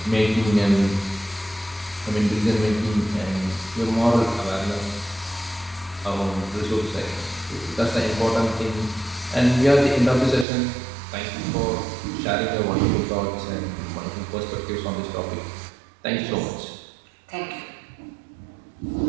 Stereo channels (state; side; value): drops out; left; at 10.5 s